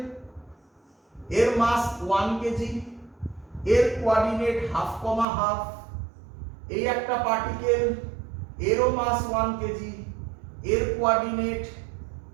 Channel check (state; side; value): drops out; left; at 5.2 s